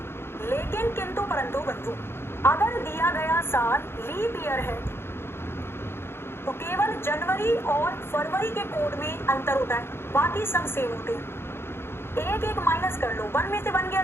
लेकिन किंतु परंतु बंधु, अगर दिया गया साल लीप ईयर है तो केवल जनवरी और फरवरी के कोड में अंतर होता है, बाकी सब सेम होते हैं। एक माइनस कर लो, 1 में से 1 गया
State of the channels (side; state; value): right; late; 0.11 ms